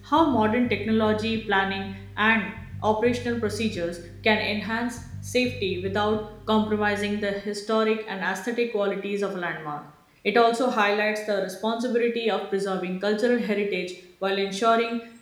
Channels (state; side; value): identical; both; correlation 1.00